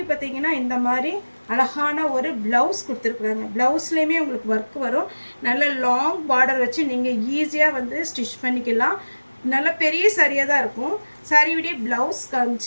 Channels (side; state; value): both; inverted; correlation -1.00